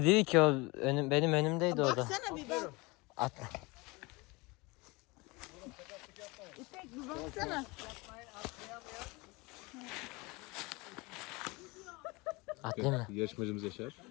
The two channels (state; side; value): quieter; right; 25.0 dB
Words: değil ki, o benim önümdeydi orada. Baksana bir bak. Atla. İpek bir baksana. Atlayayım mı? Yarışmacımız Yaşar.